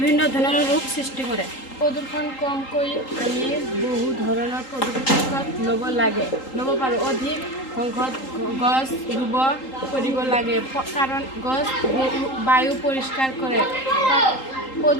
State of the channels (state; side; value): late; right; 3.8 ms